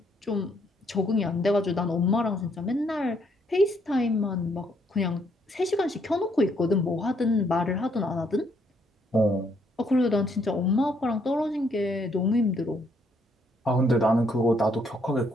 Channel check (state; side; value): normal; both; correlation 0.70